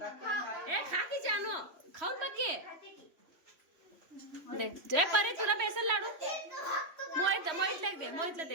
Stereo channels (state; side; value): late; left; 3.1 ms